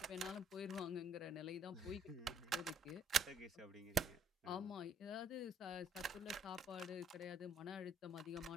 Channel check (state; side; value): normal; both; correlation 0.63